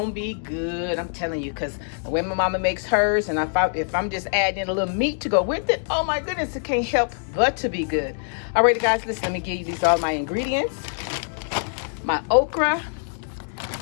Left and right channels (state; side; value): silent; right; digital silence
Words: be good, I'm telling you, because the way my mama makes hers, and if I'm just adding a little meat to go with it, oh my goodness, it can't help but to be good. Alrighty guys, listen, let me give you these all my ingredients. My okra,